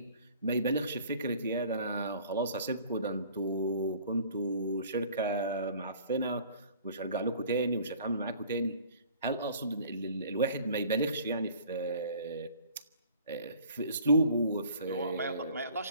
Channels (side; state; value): both; inverted; correlation -0.51